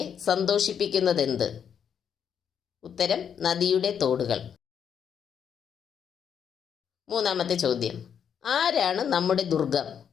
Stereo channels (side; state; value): right; quieter; 7.9 dB